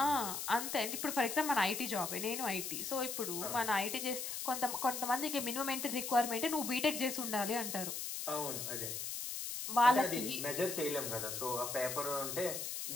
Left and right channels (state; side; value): noise; left; hiss, 4 dB below the sound